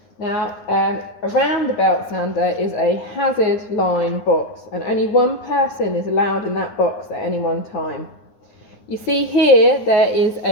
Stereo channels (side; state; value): right; late; 9.6 ms